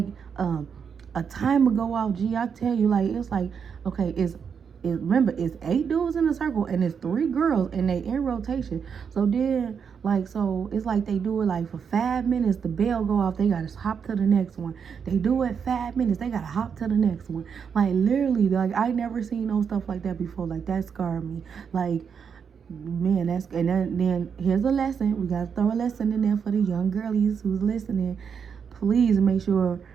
a timer go off. Gee, I tell you, like it's like okay, remember it's 8 dudes in a circle and it's 3 girls and they in rotation. So then like so it's like they do it like for 5 minutes, the bell go off, they gotta hop to the next one. They do it 5 minutes, they gotta hop to the next one. Like literally, like I never seen no stuff like that before. Like that scarred me. Like man, then here's a lesson. We gotta throw a lesson in there for the young girlies who's listening. Please make sure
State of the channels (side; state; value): left; quieter; 6.8 dB